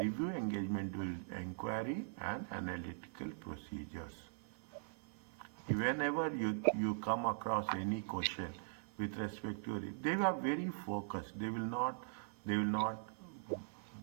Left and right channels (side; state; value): left; silent; 50 dB below the other